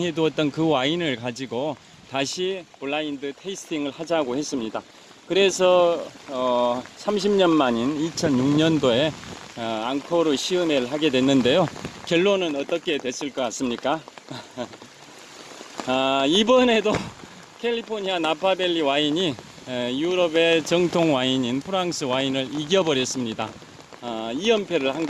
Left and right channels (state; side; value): identical; both; correlation 1.00